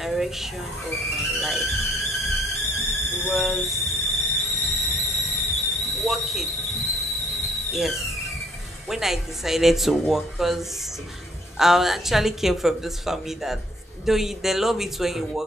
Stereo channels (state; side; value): normal; both; correlation 0.63